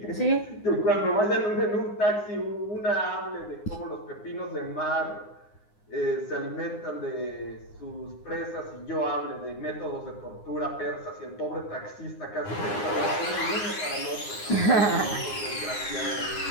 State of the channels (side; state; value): right; late; 9.7 ms